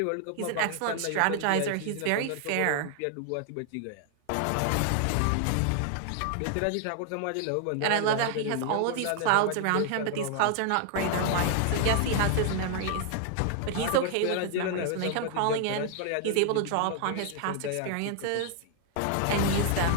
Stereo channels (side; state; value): both; different; correlation 0.00